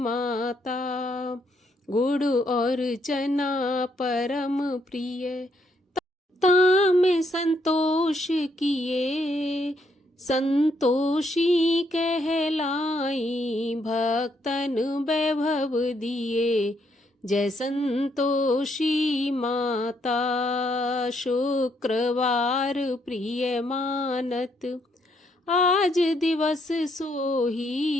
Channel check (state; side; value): normal; both; correlation 0.74